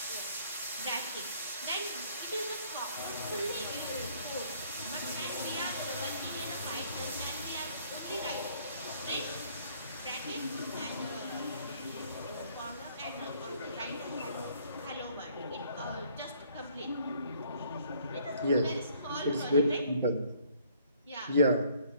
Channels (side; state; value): both; inverted; correlation -0.61